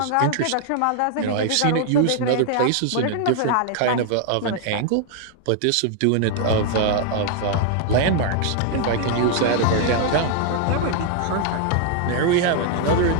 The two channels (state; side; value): different; both; correlation 0.00